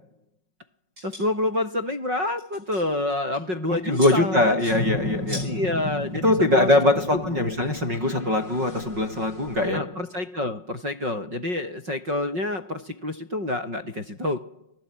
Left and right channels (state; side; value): late; left; 5.5 ms